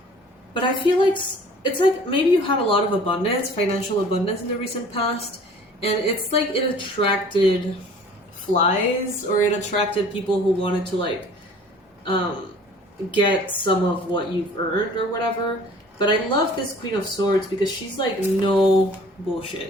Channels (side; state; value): both; normal; correlation 0.49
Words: But I feel like it's like maybe you had a lot of abundance, financial abundance in the recent past, and it's like it attracted flies, or it attracted people who wanted to like get some of what you've earned or whatever. But I love this Queen of Swords because she's like no